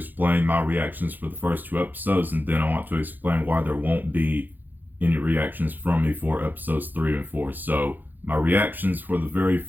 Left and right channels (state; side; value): late; left; 0.086 ms